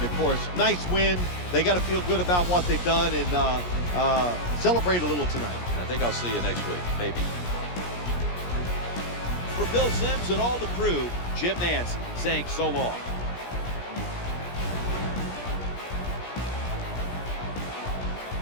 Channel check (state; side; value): late; right; 17 ms